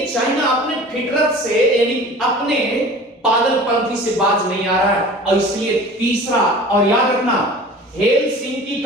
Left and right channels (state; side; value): normal; both; correlation 0.41